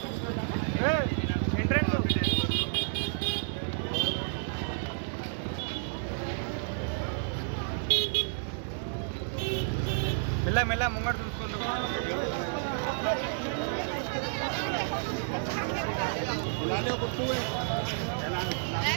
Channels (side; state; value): left; silent; digital silence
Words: మెల్ల మెల్ల ముంగడు చూసుకుంటూ